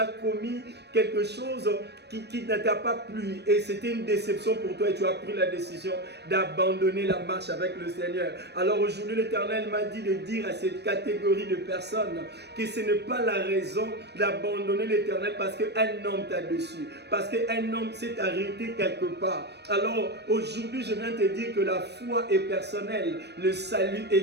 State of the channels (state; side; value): late; left; 0.49 ms